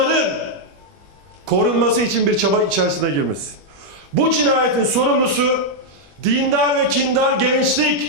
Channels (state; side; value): late; left; 21 ms